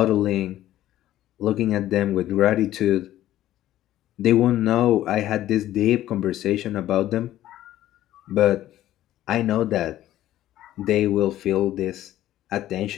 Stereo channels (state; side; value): quieter; right; 13.6 dB